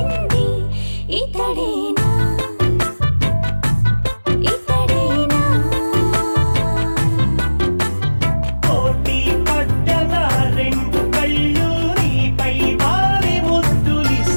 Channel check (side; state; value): both; inverted; correlation -1.00